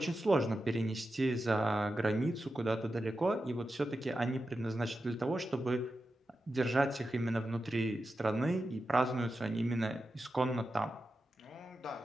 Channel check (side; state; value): both; normal; correlation 0.90